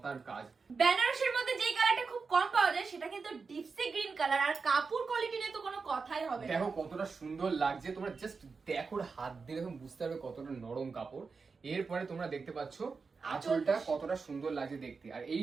কাজ। বেনারসির মধ্যে যে কালারটা খুব কম পাওয়া যায় সেটা কিন্তু ডিপসি গ্রিন কালার, আর কাপড় কোয়ালিটি নিয়ে তো কোনো কথাই হবে না। দেখো কতটা সুন্দর লাগছে, তোমরা জাস্ট দেখো, হাত দিয়ে দেখো বুঝতে পারবে কতটা নরম কাপড়। এরপরে তোমরা দেখতে পাচ্ছ আঁচলটা কতটা সুন্দর লাগছে দেখতে, আর এই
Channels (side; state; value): left; quieter; 4.8 dB